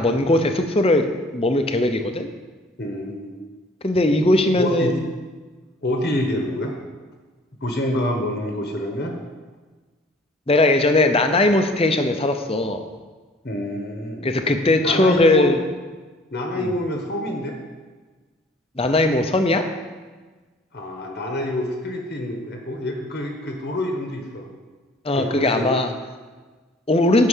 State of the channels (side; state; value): both; normal; correlation 0.53